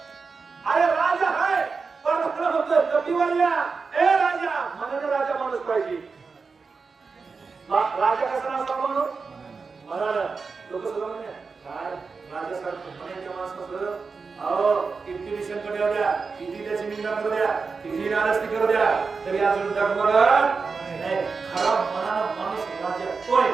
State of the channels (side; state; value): left; quieter; 4.8 dB